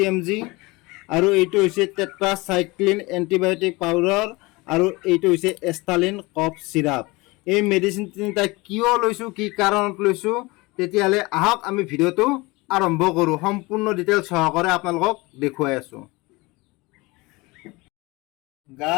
mg আৰু এইটো হৈছে টেট্ৰাচাইক্লিন এণ্টিবায়'টিক পাউডাৰ আৰু এইটো হৈছে এষ্টালিন কফ চিৰাপ। এই মেডিচিন তিনিটা কিয় লৈছোঁ, কি কাৰণত লৈছোঁ, তেতিয়াহ'লে আহক আমি ভিডিঅ'টো আৰম্ভ কৰোঁ। সম্পূৰ্ণ ডিটেইলছ সহকাৰে আপোনালোকক দেখুৱাই আছোঁ।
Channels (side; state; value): right; quieter; 23.5 dB